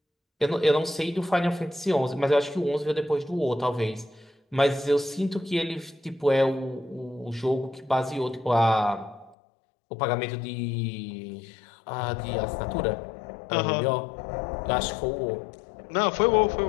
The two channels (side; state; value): right; drops out; at 9.3 s